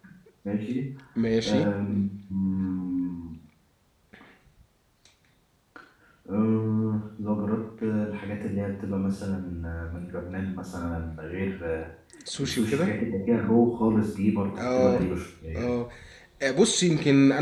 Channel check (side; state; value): both; identical; correlation 1.00